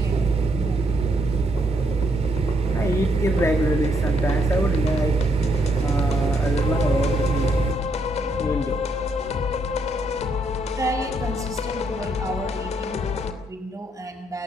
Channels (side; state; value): both; normal; correlation 0.74